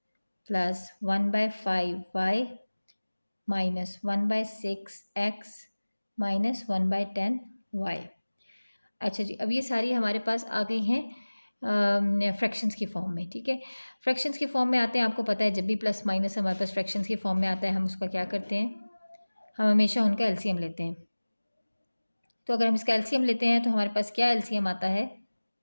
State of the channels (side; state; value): both; inverted; correlation -1.00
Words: plus 1/5 y minus 1/6 x minus 1/10 y। अच्छा जी, अब ये सारी हमारे पास आ गई हैं फ्रैक्शंस की फॉर्म में। ठीक है, फ्रैक्शंस की फॉर्म में आते हैं। आपको पता है जब भी प्लस माइनस हमारे पास फ्रैक्शंस की फॉर्म में आता है हम उसका क्या करते हैं, हम हमेशा उनका एलसीएम लेते हैं। तो अगर हम इसका एलसीएम लेते हैं तो हमारे पास क्या एलसीएम आता है,